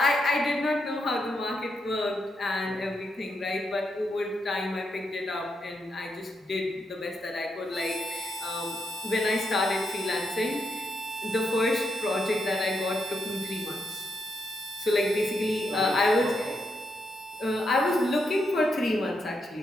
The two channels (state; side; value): normal; both; correlation 0.81